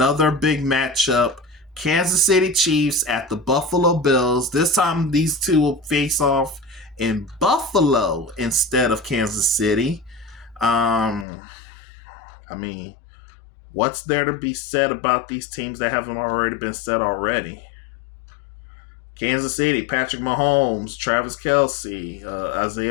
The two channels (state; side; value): drops out; right; at 11.2 s